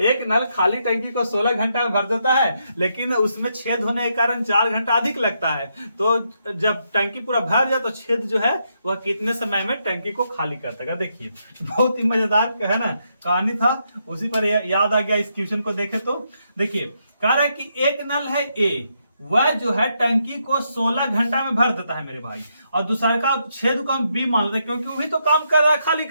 नल खाली टंकी को 16 घंटा में भर देता है लेकिन उसमें छेद होने के कारण 4 घंटा अधिक लगता है। तो जब टंकी पूरा भर जाए तो छेद जो है वह कितने समय में टंकी को खाली कर देगा। देखिए बहुत ही मजेदार है ना कहानी था, उसी पर याद आ गया इस क्वेश्चन को देखे तो। देखिए कह रहा है कि एक नल है ए, वह जो है टंकी को 16 घंटा में भर देता है मेरे भाई, और दूसरा का छेद को हम बी मान लेते हैं क्योंकि वही तो काम कर रहा है खाली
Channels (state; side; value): inverted; both; correlation -0.79